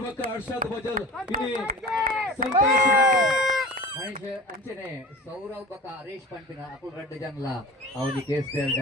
ಬಕ್ಕ ಹರ್ಷದ್ ಬಜಲ್ ಇಲ್ಲಿ ಸಂತೋಷ್ ಅಂಚನೆ ಸೌರವ್ ಬಕ್ಕ ಹರೀಶ್ ಪಂಪಿನ ಅಕುಲ್ ರೆಡ್ ಜನಲ ಅವನಿ ಕೇಸ್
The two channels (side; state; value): both; normal; correlation 0.36